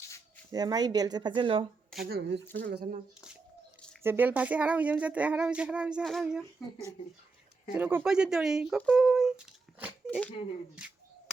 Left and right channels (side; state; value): left; quieter; 4.1 dB